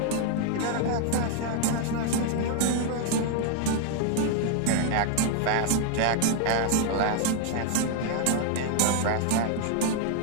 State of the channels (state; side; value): different; both; correlation 0.00